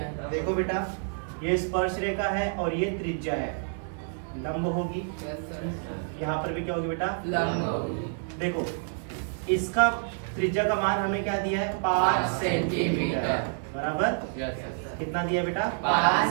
देखो बेटा, ये स्पर्श रेखा है और ये त्रिज्या है, लंब होगी। यहाँ पर भी क्या होगी बेटा? लंब होगी। देखो इसका त्रिज्या का मान हमें क्या दिया है? 5 सेंटीमीटर, बराबर। कितना दिया बेटा?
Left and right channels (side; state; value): left; silent; 59 dB below the other